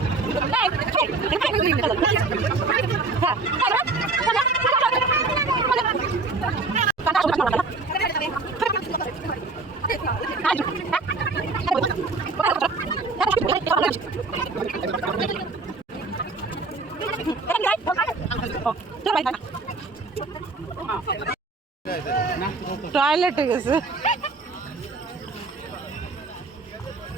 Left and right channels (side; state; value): left; quieter; 3.6 dB